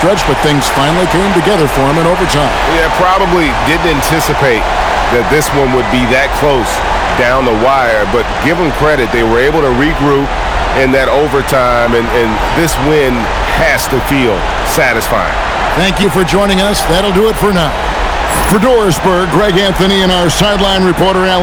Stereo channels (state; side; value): identical; both; correlation 1.00